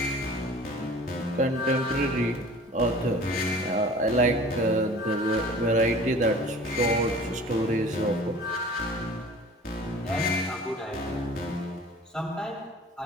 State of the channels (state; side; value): normal; both; correlation 0.44